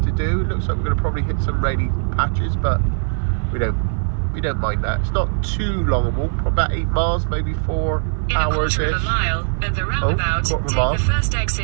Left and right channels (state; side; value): silent; left; 55 dB below the other